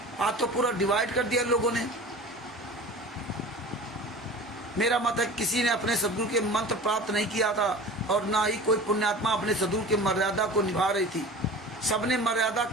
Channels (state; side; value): normal; both; correlation 0.38